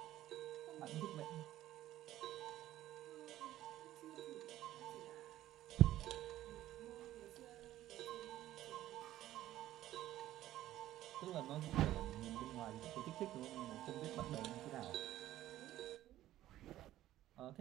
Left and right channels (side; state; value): left; quieter; 14.0 dB